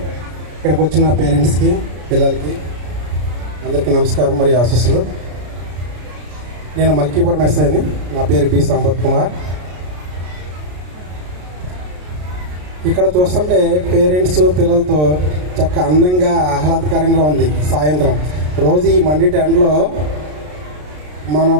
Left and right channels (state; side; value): late; left; 33 ms